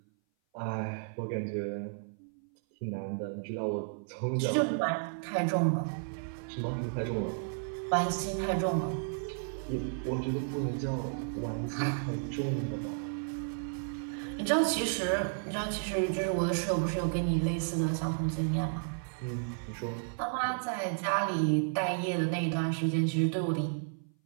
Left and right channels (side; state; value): left; silent; 56 dB below the other